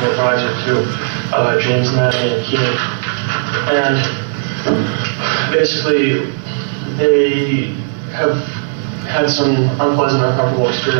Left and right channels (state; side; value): silent; left; 69 dB below the other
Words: advisor to James, Maggio, and O'Keefe. And basically, they have had some unpleasant, uncomfortable